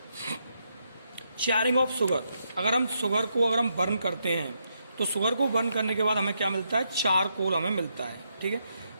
Charring of sugar, अगर हम शुगर को अगर हम बर्न करते हैं तो शुगर को बर्न करने के बाद हमें क्या मिलता है, चारकोल हमें मिलता है। ठीक है,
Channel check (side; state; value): both; inverted; correlation -0.80